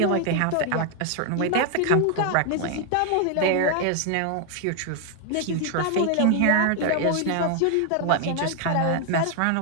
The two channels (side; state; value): both; different; correlation 0.00